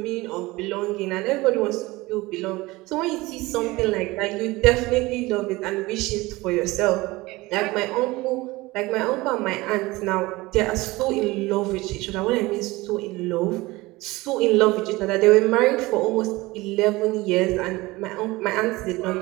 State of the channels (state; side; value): quieter; left; 20.9 dB